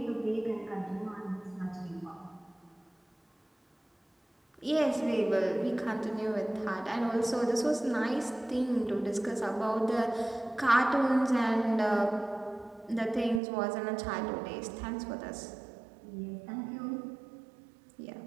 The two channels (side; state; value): left; drops out; at 13.4 s